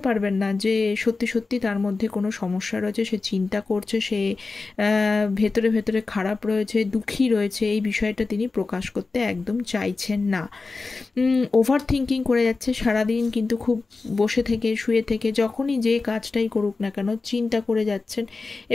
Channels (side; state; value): right; quieter; 3.9 dB